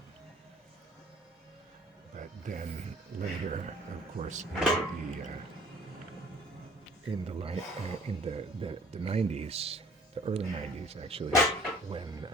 But then later, of course, in the 90s, the early 90s actually, when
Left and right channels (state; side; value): normal; both; correlation 0.53